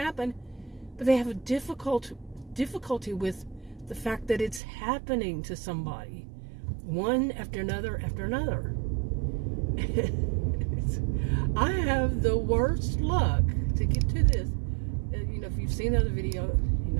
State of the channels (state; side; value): drops out; left; at 4.6 s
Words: but they have a difficulty with the fact that it's happening to somebody, one after another after another. I have the worst luck to get to this. If you've seen the other video,